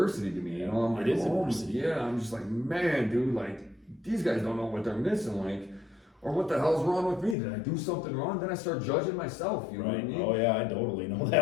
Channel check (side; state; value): right; drops out; at 7.4 s